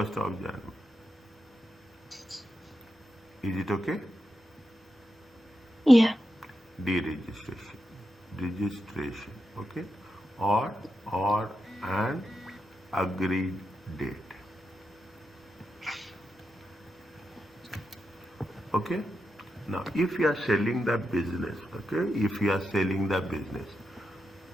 of January. Is it okay? Yeah. Deregistration. Registration. Okay. Or an agreed date. Okay. Now, if you are selling the business, okay, if you are selling the business,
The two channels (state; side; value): normal; both; correlation 0.87